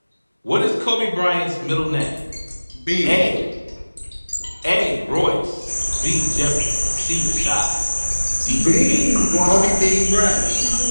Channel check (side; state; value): both; inverted; correlation -1.00